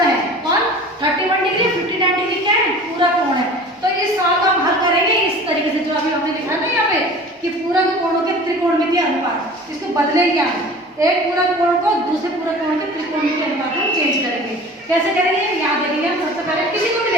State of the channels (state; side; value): normal; both; correlation 0.41